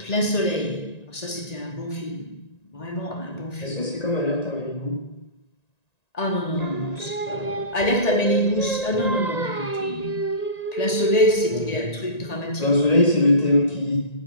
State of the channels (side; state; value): right; late; 1.9 ms